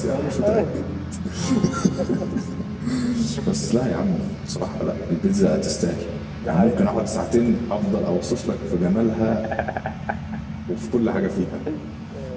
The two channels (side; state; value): both; identical; correlation 1.00